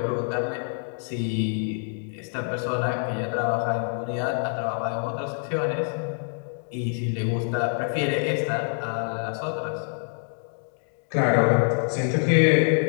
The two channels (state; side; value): silent; right; digital silence